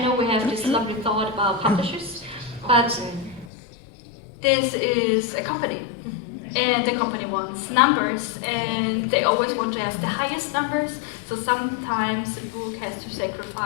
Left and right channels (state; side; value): drops out; right; at 3.5 s